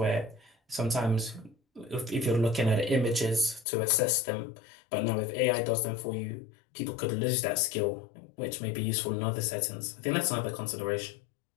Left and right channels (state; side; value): drops out; right; at 3.7 s